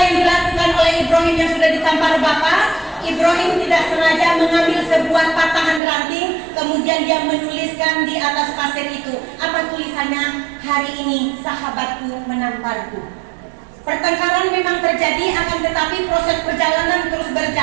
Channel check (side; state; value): left; drops out; at 5.8 s